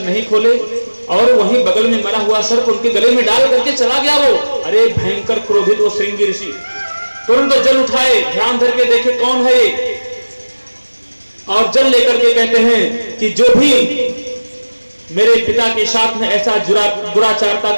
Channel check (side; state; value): both; inverted; correlation -1.00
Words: नहीं खोले, और वहीं बगल में मरा हुआ सर्प उनके गले में डाल करके चला गया वो। अरे भयंकर क्रोधित वो श्रृंगी ऋषि तुरंत जल उठाए, ध्यान धर के देखे कौन है ये, और जल लेकर के कहते हैं कि जो भी मेरे पिता के साथ में ऐसा दुराचारता